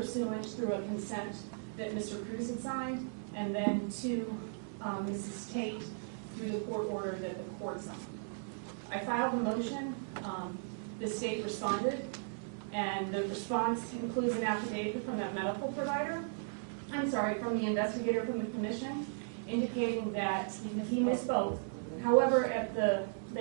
through a consent that Mr. Cruz had signed, and then to Mrs. Tate through the court order that the court signed. I filed a motion. The state responded, and the response includes an affidavit from that medical provider, from the investigator from the commission, indicating that he misspoke. However, at the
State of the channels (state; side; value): silent; left; digital silence